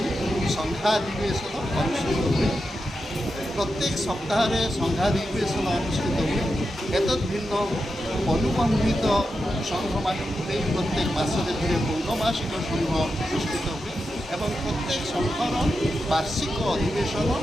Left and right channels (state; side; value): normal; both; correlation 0.88